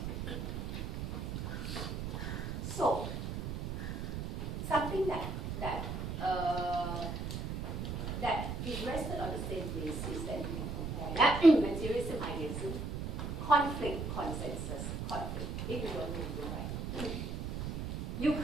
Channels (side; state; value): right; noise; rumble, 4 dB below the sound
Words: So, something that is rested on the same basis that you can compare. Yeah? Materialism, idealism, conflict, consensus, conflict. If you don't know, you're right. You